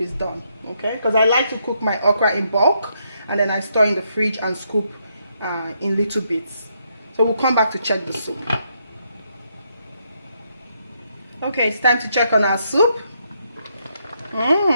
is done. Okay, because I like to cook my okra in bulk, and then I store in the fridge and scoop in little bits. So we'll come back to check the soup. Okay, it's time to check on our soup.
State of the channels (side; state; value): both; inverted; correlation -0.76